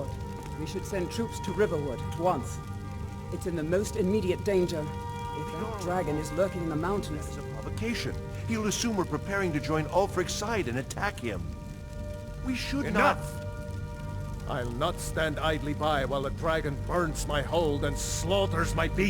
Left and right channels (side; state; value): both; identical; correlation 1.00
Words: we should send troops to Riverwood at once. It's in the most immediate danger. If that dragon is lurking in the mountains... It's a provocation. He'll assume we're preparing to join Ulfric's side and attack him. We should not... I'll not stand idly by while the dragon burns my hold and slaughters my